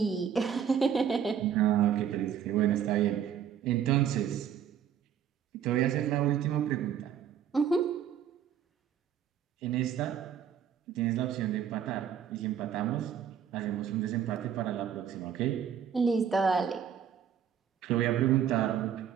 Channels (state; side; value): quieter; left; 8.6 dB